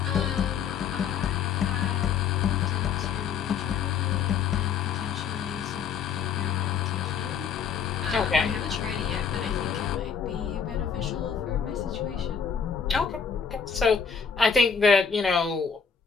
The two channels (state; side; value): quieter; right; 6.7 dB